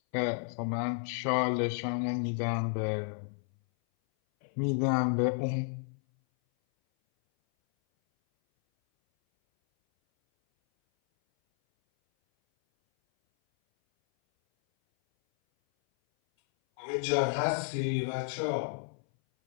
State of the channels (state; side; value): silent; right; 57 dB below the other